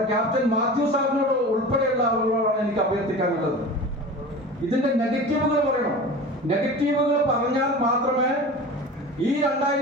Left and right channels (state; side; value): normal; both; correlation 0.35